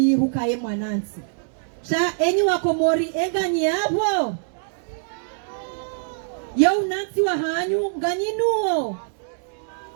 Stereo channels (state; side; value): silent; left; digital silence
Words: hukaye mwanansi sha enyi wa Komori enganyi hapo ya unansi wa hanyu nganyinuo